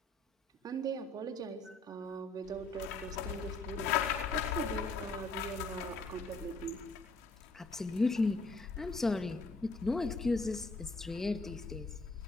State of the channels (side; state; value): right; quieter; 3.1 dB